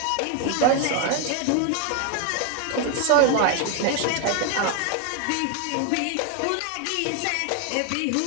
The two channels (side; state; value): both; different; correlation 0.01